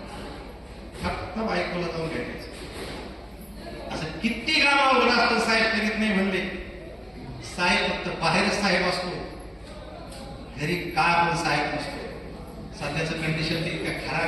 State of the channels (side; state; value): both; identical; correlation 1.00